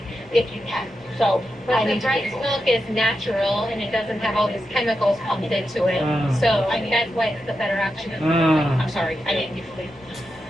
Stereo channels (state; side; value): noise; left; rumble, 27 dB below the sound